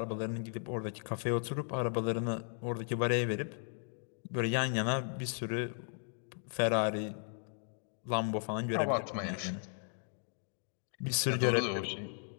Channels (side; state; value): right; silent; 54 dB below the other